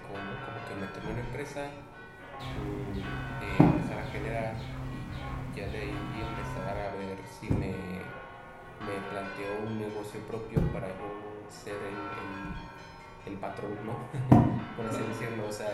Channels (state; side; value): identical; both; correlation 1.00